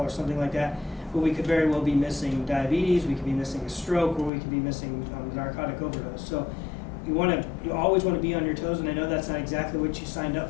something like that. But we could very well be missing diabetes, we could be missing a stroke, or we could be missing narcotic overdose. So you always want to be on your toes, and I know that's not exactly what you signed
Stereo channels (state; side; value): drops out; right; at 4.3 s